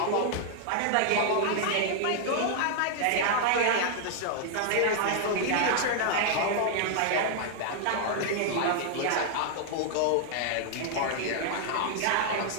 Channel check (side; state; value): both; different; correlation -0.01